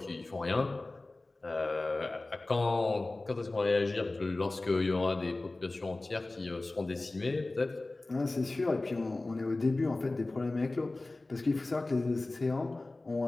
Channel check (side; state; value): right; quieter; 3.0 dB